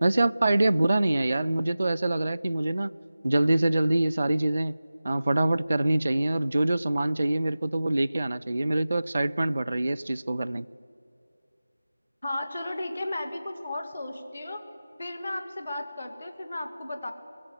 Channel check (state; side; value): inverted; both; correlation -0.96